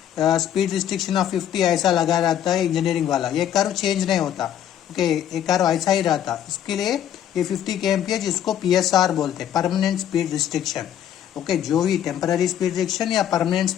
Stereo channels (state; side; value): quieter; right; 10.3 dB